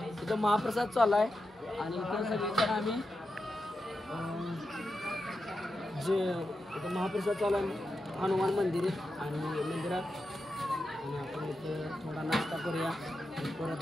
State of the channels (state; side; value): normal; both; correlation 0.89